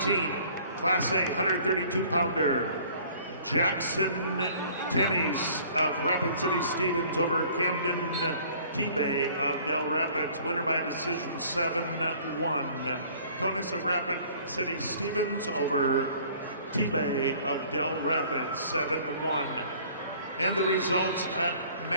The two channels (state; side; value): inverted; both; correlation -0.53